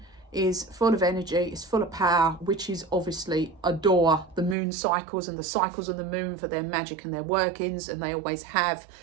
is full of energy, it's full of power. Witches obviously adore the moon cycles and the cycles of the moon for their magic and their workings, and they always have.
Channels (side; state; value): left; drops out; at 4.5 s